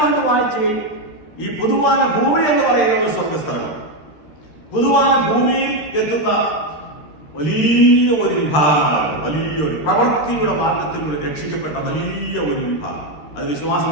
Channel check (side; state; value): right; late; 13 ms